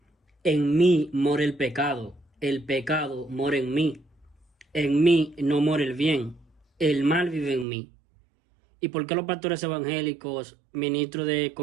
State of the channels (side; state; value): left; drops out; at 7.7 s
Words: En mí mora el pecado mora en mí no mora el bien, el mal vive en mí. ¿Y por qué los pastores evangélicos, ministros de